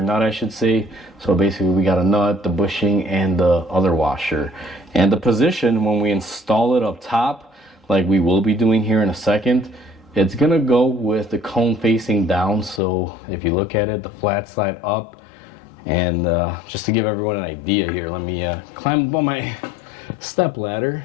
nut I should say. So basically we got a nut, the bushing, and the other washer. And the position when we install it up top, like we will be doing here in a second, it's gonna go with the cone facing down. So if you look at it, the flat side up. And just to give everyone an idea here, let me climb up on my step ladder.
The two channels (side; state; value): right; drops out; at 12.8 s